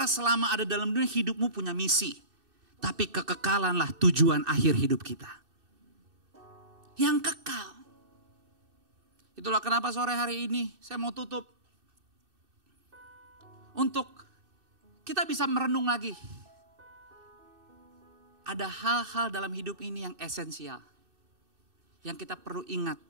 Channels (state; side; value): late; left; 2.6 ms